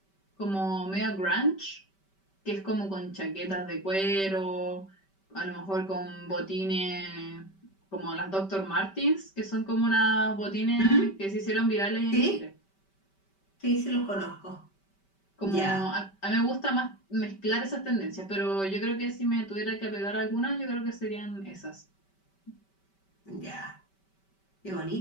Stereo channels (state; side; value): late; right; 5.2 ms